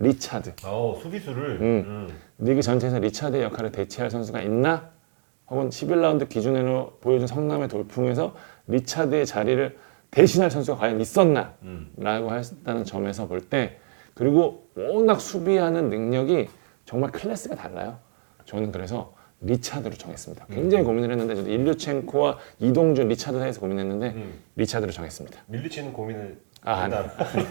수비수를 리그 전체에서 리차드의 역할을 대체할 선수가 있나? 혹은 11라운드 기준으로 보여준 성남의 돌풍에서 리차드의 자리를 대신할 선수가 과연 있었나? 라고 했다는 점에서 볼 때 그리고 워낙 수비하는 능력이 정말 클래스가 달라요. 저는 그래서 리차드로 정했습니다. 굉장히 고민을 했는데 저도 일류첸코와 이동준, 리차드 사이에서 고민했는데 리차드로 정했습니다. 밀리치는 고민을 아, 한다.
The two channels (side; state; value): left; silent; 62 dB below the other